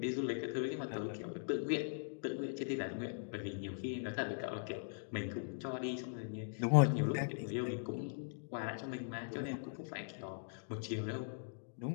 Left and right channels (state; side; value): silent; right; digital silence